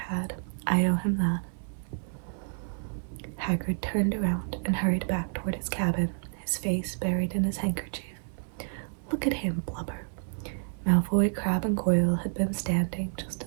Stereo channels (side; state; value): left; silent; digital silence